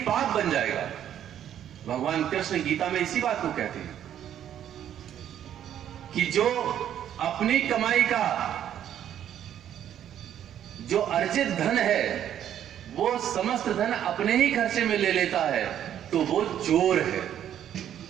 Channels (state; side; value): quieter; left; 10.4 dB